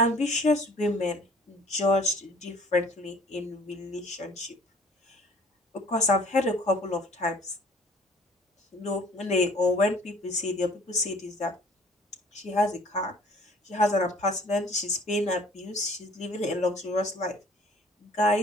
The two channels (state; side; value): normal; both; correlation 0.53